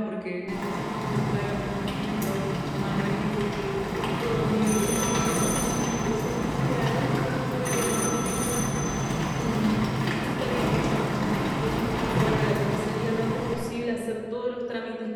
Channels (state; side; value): identical; both; correlation 1.00